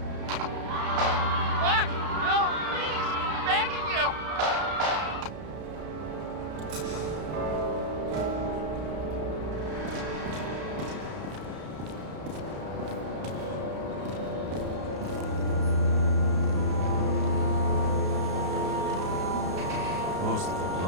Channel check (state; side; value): late; left; 32 ms